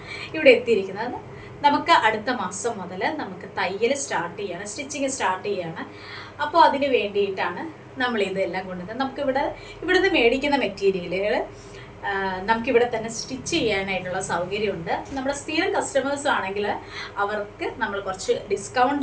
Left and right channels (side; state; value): both; identical; correlation 1.00